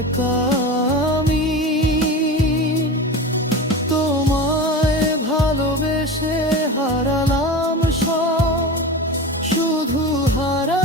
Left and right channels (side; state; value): both; normal; correlation 0.28